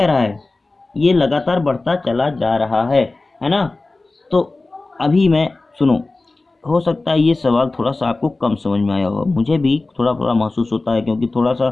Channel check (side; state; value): right; quieter; 3.3 dB